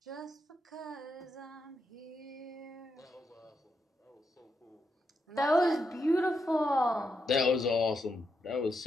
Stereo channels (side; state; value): both; normal; correlation 0.83